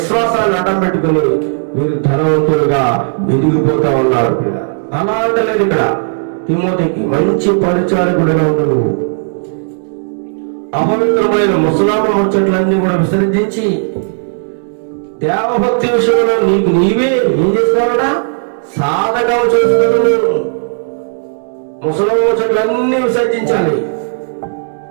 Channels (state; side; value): silent; left; digital silence